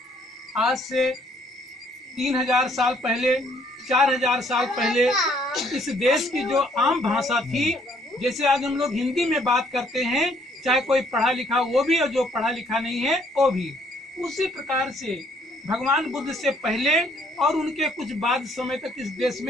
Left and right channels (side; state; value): both; normal; correlation 0.65